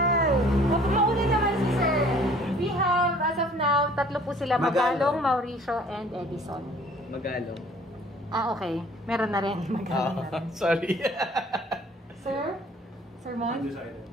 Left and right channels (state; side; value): normal; both; correlation 0.54